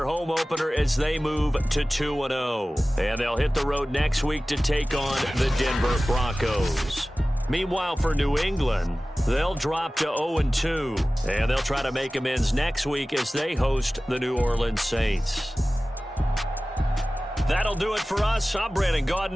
home opener as they move to 2-0. And they'll hit the road next week to take on the Denver Broncos. Meanwhile, for New England, they'll drop to 0-2. And they'll try to make amends next week as they host the New Orleans Saints. That'll do it for us. I'm Brandon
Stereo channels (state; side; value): normal; both; correlation 0.97